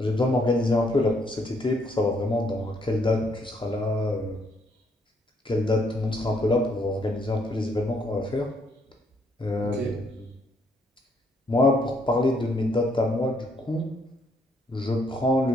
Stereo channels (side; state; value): both; normal; correlation 0.70